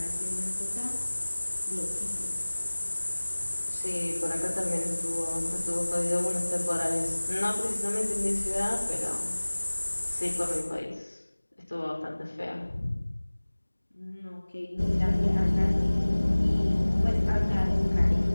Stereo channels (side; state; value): both; inverted; correlation -1.00